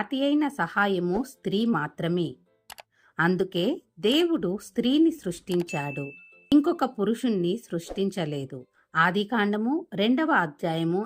అయిన సహాయము స్త్రీ మాత్రమే. అందుకే దేవుడు స్త్రీని సృష్టించాడు, ఇంకొక పురుషుణ్ణి సృష్టించలేదు. ఆదికాండము 2వ అధ్యాయము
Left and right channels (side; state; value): both; identical; correlation 1.00